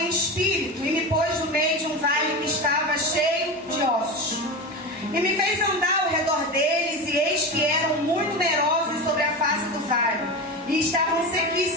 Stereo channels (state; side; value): normal; both; correlation 0.23